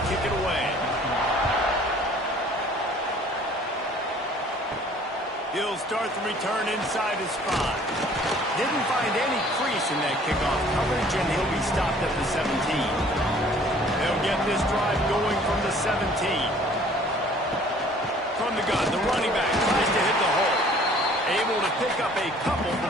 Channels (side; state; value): both; normal; correlation 0.54